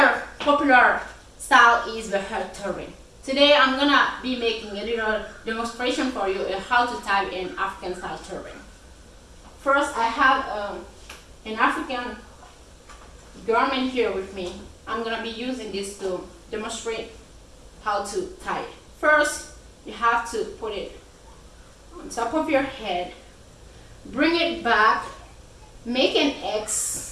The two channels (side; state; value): both; identical; correlation 1.00